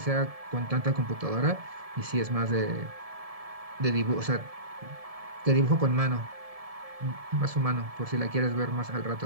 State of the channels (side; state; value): left; late; 1.7 ms